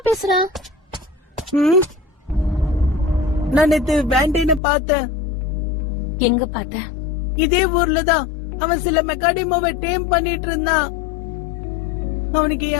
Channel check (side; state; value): right; drops out; at 4.6 s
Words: பேசுற? நான் நேத்து வேண்டேன்னு பார்த்தேன். எங்க பார்த்த? இதே ஊர்ல தான். அவன் சில மெக்காடிமோவை டேம் பண்ணிட்டு இருந்தான். அவனுக்கு